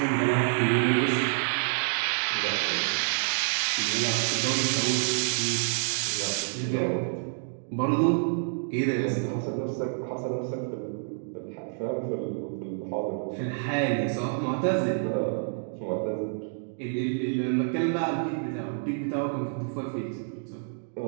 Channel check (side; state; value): left; silent; digital silence